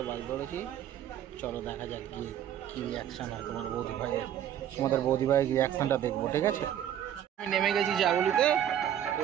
বাস ধরেছি, চলো দেখা যাক গিয়ে কী রিয়াকশান হয় তোমার বৌদি ভাইয়ের, তোমাদের বৌদি ভাইয়ের রিয়াকশানটা দেখবো, ঠিক আছে? আমি নেমে গেছি জাগুলিতে, তো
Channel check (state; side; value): quieter; left; 10.5 dB